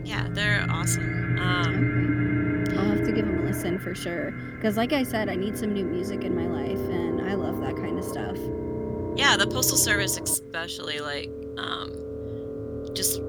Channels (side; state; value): both; identical; correlation 1.00